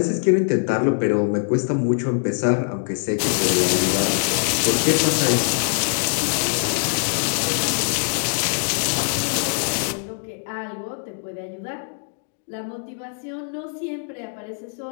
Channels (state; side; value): silent; right; digital silence